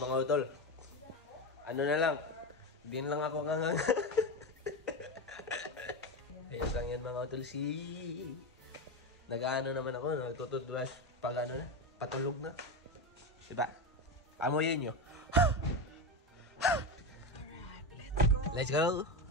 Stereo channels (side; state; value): both; normal; correlation 0.17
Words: utol. Ano na lang. Din lang ako ngang. Ayos lang yan mga utol. Nag-ano naman ako. Nagtutoothbrush. Pag ano na. Patulog na. Diba? Amoyin nyo. Let's go!